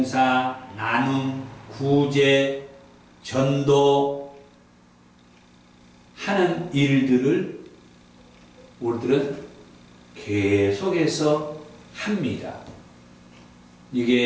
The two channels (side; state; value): both; identical; correlation 1.00